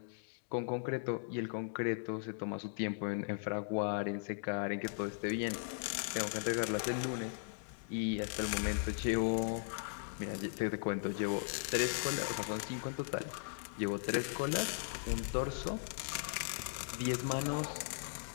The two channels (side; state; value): right; silent; digital silence